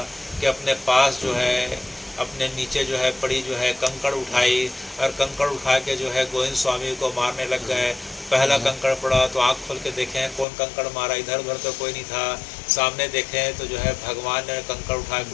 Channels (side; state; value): right; drops out; at 10.5 s